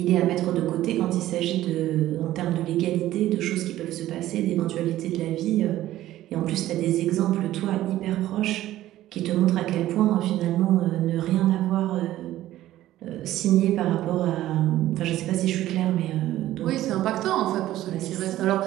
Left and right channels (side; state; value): left; quieter; 14.3 dB